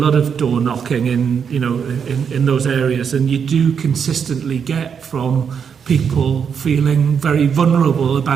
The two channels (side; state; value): left; quieter; 7.0 dB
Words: of door knocking in those areas, and you do consistently get from people feeling very vulnerable